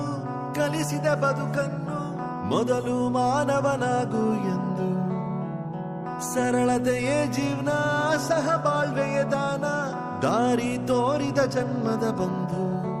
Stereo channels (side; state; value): both; identical; correlation 1.00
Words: ಕಲಿಸಿದ ಬದುಕನ್ನು, ಮೊದಲು ಮಾನವನಾಗು ಎಂದು. ಸರಳತೆಯೇ ಜೀವನ, ಸಹಬಾಳ್ವೆಯೇ ದಾನ, ದಾರಿ ತೋರಿದ ಜನ್ಮದ ಬಂಧು.